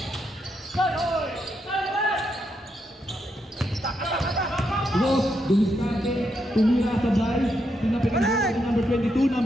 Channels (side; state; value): both; normal; correlation 0.80